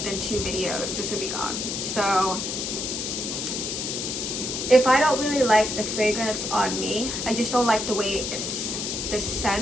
2 videos. This would be gone. So if I don't really like the fragrance on me, I just don't like the way the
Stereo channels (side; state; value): left; noise; hiss, 3 dB below the sound